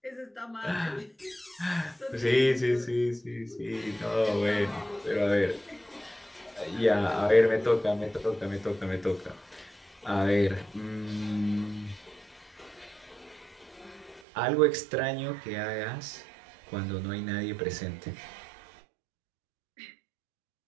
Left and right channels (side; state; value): left; drops out; at 14.2 s